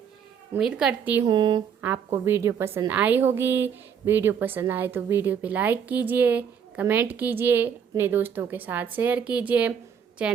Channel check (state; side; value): quieter; left; 7.6 dB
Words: उम्मीद करती हूँ आपको वीडियो पसंद आई होगी। वीडियो पसंद आए तो वीडियो पे लाइक कीजिए, कमेंट कीजिए, अपने दोस्तों के साथ शेयर कीजिए।